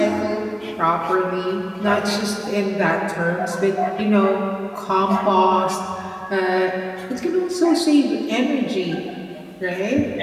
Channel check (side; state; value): both; identical; correlation 1.00